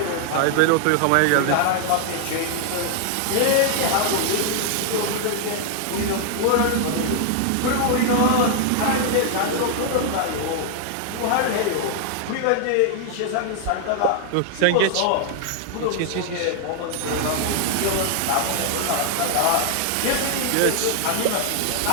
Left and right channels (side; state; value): both; different; correlation 0.00